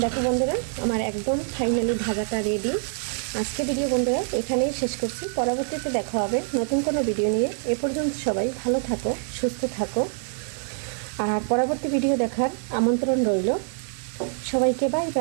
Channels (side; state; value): left; silent; 62 dB below the other